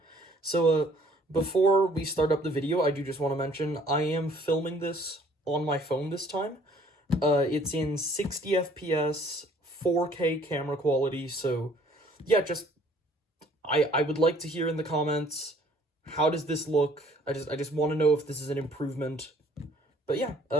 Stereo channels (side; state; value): both; normal; correlation 0.58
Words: So, before we start up the video, I do just want to mention, I am filming this on my phone this time. It's in 60 FPS, 4K camera quality, so yeah, I would like to hear in the comments, how does this look? I just want to know if this is an improvement. But yeah,